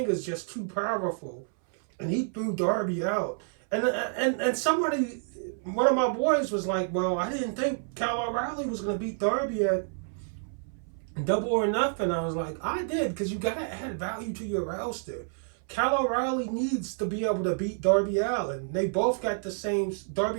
is just too powerful, and he threw Darby out. And somebody, one of my boys was like, well, I didn't think Kyle O'Reilly was going to beat Darby at Double or Nothing. I was like, I did, because you got to add value to your roster. Kyle O'Reilly needs to be able to beat Darby Allin. They both got the same.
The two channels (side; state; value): left; silent; 59 dB below the other